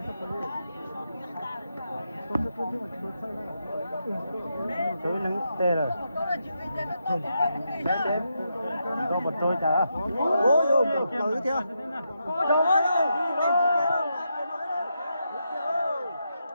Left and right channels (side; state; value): both; inverted; correlation -0.83